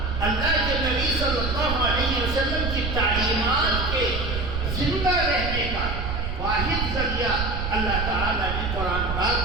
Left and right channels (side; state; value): right; noise; rumble, 3 dB below the sound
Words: اللہ کے نبی صلی اللہ علیہ وسلم کی تعلیمات کے زندہ رہنے کا واحد ذریعہ اللہ تعالیٰ نے قرآن